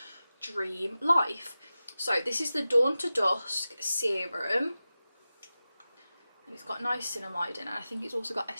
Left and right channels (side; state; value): both; inverted; correlation -0.95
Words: dream life. So this is the Dawn to Dusk serum, and it's got niacinamide in it. I think it's also got